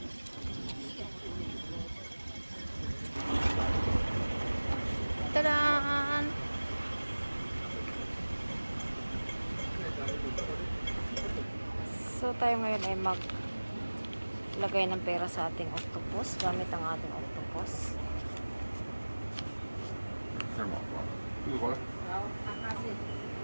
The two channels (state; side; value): inverted; both; correlation -1.00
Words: tadaan! So, tayo ngayon ay maglagay ng pera sa ating octopus gamit ang ating octopus.